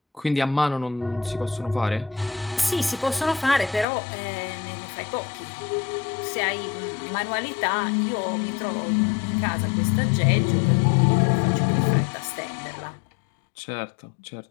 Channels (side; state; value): right; drops out; at 3.9 s